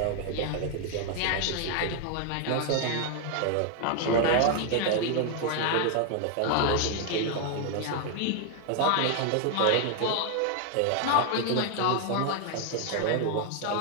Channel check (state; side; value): different; both; correlation 0.00